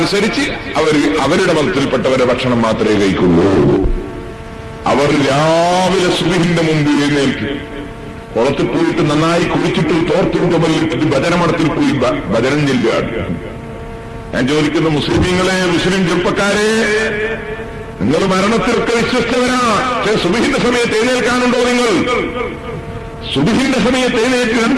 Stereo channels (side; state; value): both; identical; correlation 1.00